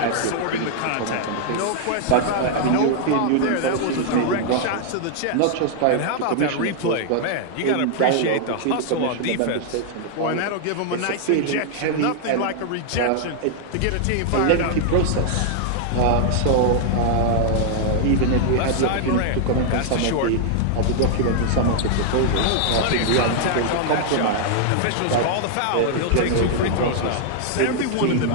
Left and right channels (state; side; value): different; both; correlation 0.00